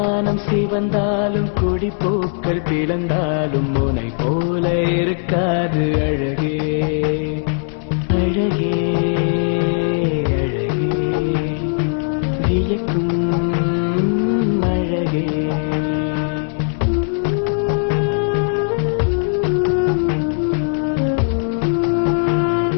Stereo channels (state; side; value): silent; right; 67 dB below the other